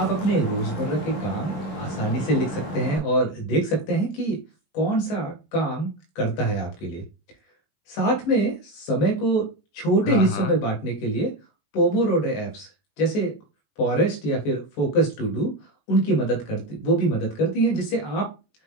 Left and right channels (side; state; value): right; late; 21 ms